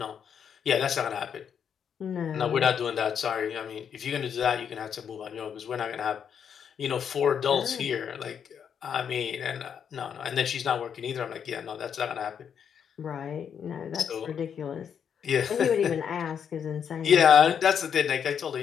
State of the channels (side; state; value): right; quieter; 7.8 dB